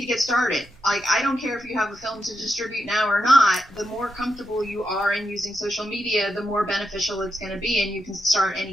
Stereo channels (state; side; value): normal; both; correlation 0.84